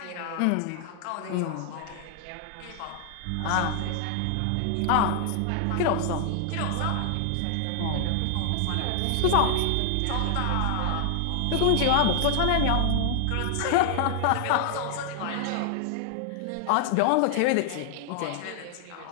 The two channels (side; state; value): both; different; correlation 0.00